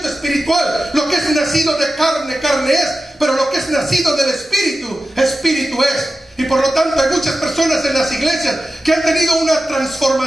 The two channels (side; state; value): both; normal; correlation 0.93